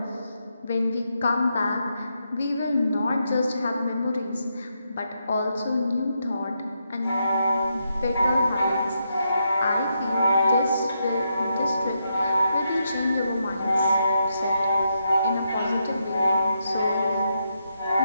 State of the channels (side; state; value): both; inverted; correlation -0.82